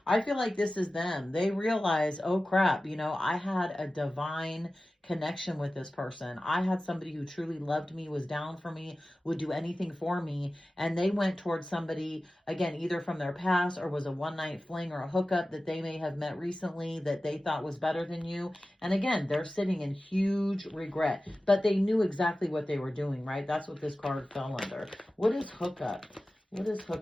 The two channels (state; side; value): normal; both; correlation 0.95